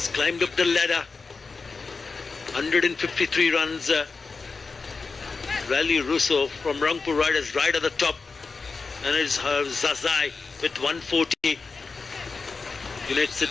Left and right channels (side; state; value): right; quieter; 4.4 dB